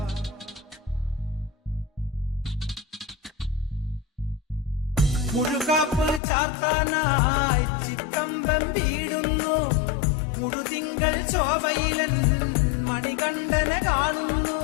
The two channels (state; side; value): drops out; right; at 6.2 s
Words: മുഴുകാപ്പ് ചാത്താനായി ചിക്കമ്പം വീടുന്നു മുഴുതിങ്കൾ ശോഭയിലെന്ന്